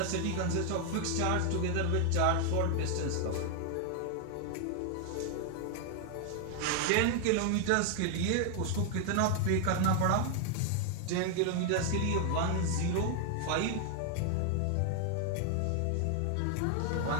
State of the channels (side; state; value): both; different; correlation 0.00